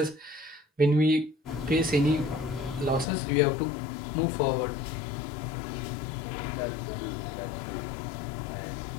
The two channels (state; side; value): drops out; right; at 3.1 s